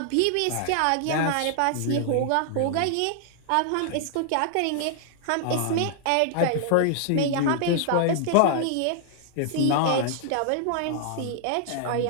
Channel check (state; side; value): different; both; correlation -0.01